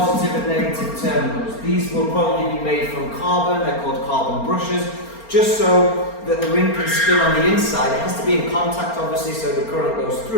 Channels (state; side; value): late; right; 4.3 ms